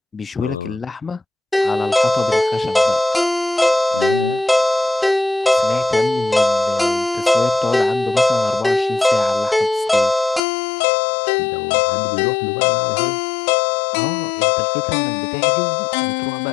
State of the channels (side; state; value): right; drops out; at 10.4 s